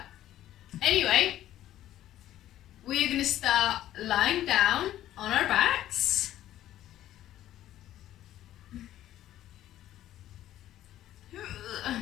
Anyway, we're going to start lying down on our backs. So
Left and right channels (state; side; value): quieter; right; 13.0 dB